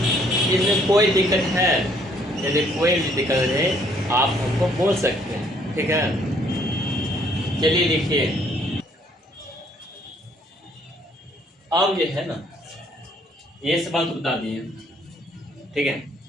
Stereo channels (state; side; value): normal; both; correlation 0.64